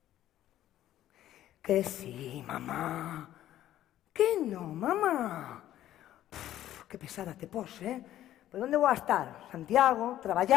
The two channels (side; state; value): right; quieter; 12.8 dB